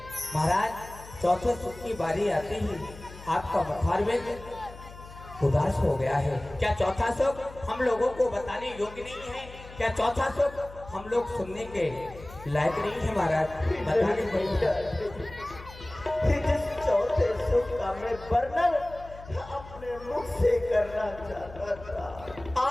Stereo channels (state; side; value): noise; left; hum, 17 dB below the sound